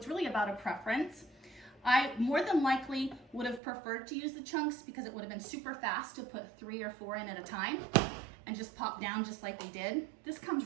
really about a preference. I more than likely would have preferred to use the chunks because it would have been super fast to put 3 or 4 in at a time and just pop down just like we did. This comes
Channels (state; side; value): drops out; left; at 3.6 s